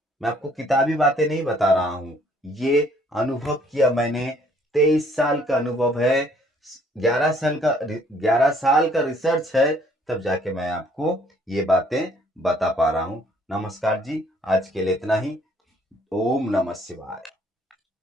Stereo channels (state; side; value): normal; both; correlation 0.62